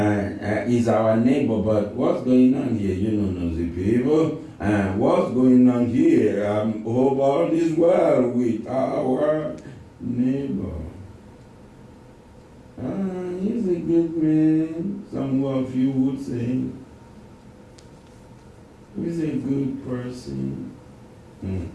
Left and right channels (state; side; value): identical; both; correlation 1.00